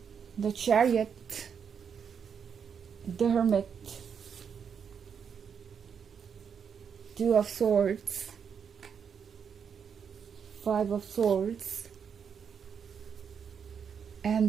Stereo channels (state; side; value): quieter; left; 7.0 dB